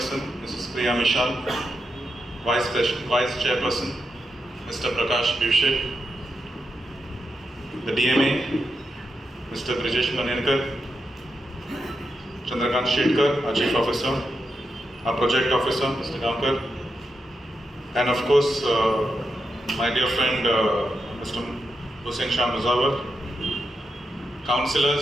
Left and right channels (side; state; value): both; normal; correlation 0.86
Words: Mrs. Priya Mishal, Vice Chairperson, Mr. Prakash Bivshe, the DMA, Mr. Brijesh Manenkar, Chandrakant Shetkar, our Chief Officer, our Project Officer, Mr. Gamkar, and of course, my dear friend, Mr. Hussain Shah Muzawar,